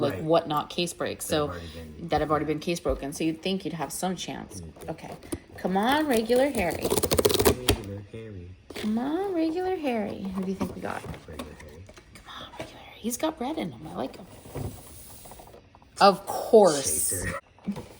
Whatnot case breaks. That have already been case broken. So you'd think you'd have some chance. Okay, come on, regular Harry. Regular Harry. Come on, regular Harry. Who do you think we got? Regular Harry. Come on, regular Harry. He's got red in him. I like him. Of course. Chaser.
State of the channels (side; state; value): both; identical; correlation 1.00